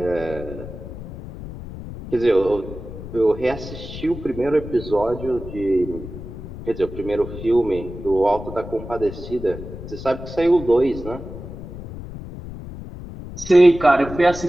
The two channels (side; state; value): left; noise; rumble, 11 dB below the sound